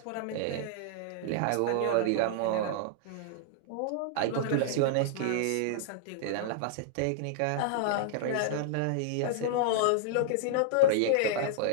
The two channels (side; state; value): both; different; correlation -0.01